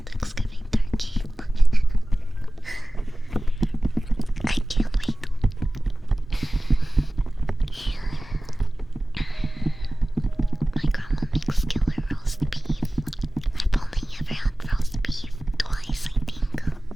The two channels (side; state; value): both; normal; correlation 0.97